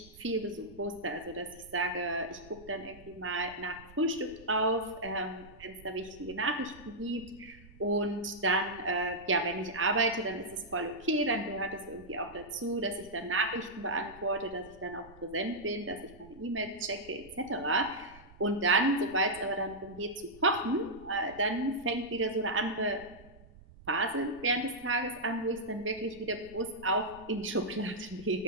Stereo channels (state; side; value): noise; right; rumble, 21 dB below the sound